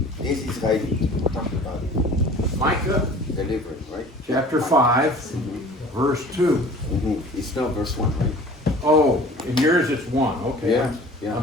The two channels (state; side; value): normal; both; correlation 0.45